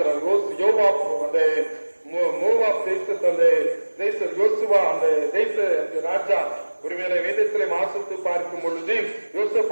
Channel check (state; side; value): inverted; both; correlation -1.00